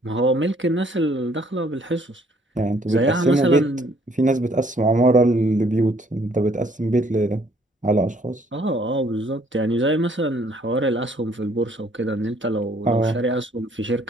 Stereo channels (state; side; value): normal; both; correlation 0.63